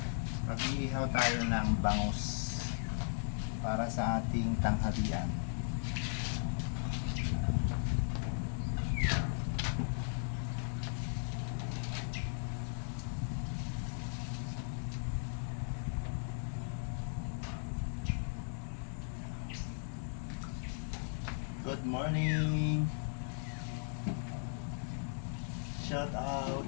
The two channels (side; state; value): right; silent; digital silence